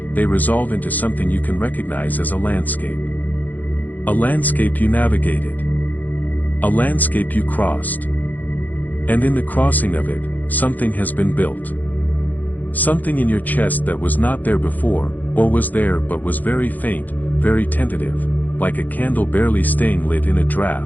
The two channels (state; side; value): late; right; 0.082 ms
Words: they resolve into something you can recognize as a landscape. A landscape you navigated. A landscape you crossed. And in the crossing of it, something has been built. Something in your chest that was not there before, or was there but was very faint, very tentative, like a candle barely staying lit in a